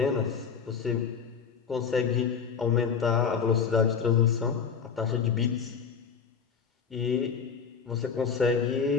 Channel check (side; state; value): right; quieter; 6.4 dB